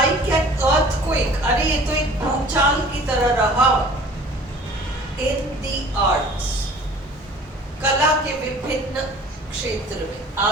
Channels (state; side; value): normal; both; correlation 0.48